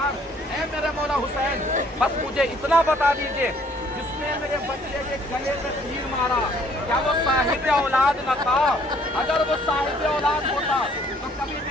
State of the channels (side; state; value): both; normal; correlation 0.61